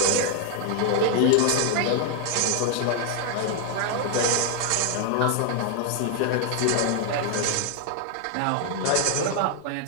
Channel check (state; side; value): different; both; correlation 0.00